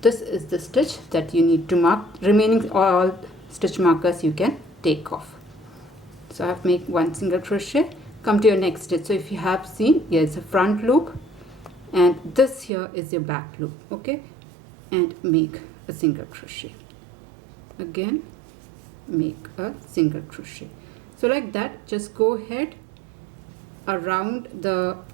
This is the stitch that you need to mark. Remaining all stitch markers you can take off. So I have made 1 single crochet. Come to your next stitch. So if you have seen, here is a front loop and this here is your back loop, okay, and make a single crochet. Again make a single crochet. So like that, just go ahead around the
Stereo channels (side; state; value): left; drops out; at 12.7 s